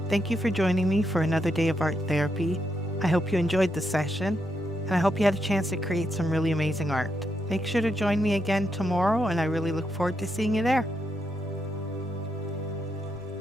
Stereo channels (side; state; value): both; normal; correlation 0.81